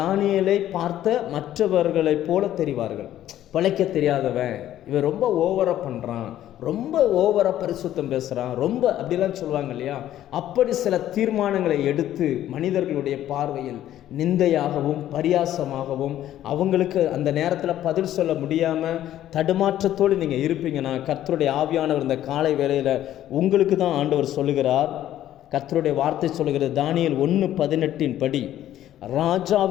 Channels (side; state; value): right; quieter; 12.4 dB